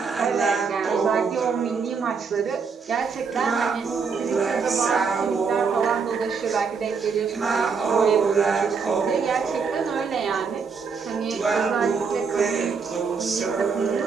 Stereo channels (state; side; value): quieter; left; 5.5 dB